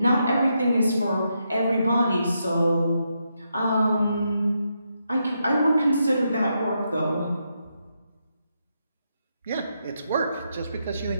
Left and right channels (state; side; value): inverted; both; correlation -0.82